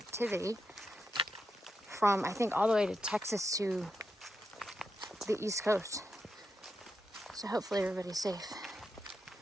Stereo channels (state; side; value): normal; both; correlation 0.85